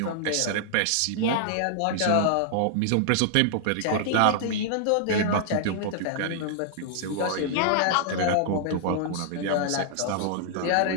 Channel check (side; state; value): both; different; correlation -0.01